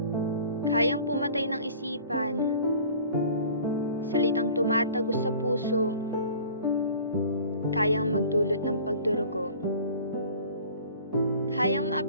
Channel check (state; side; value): inverted; both; correlation -0.46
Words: kayang pumatay ng isipan. Salitang tumatagos sa puso, kayang magdulot ng pagdurugo. Kayang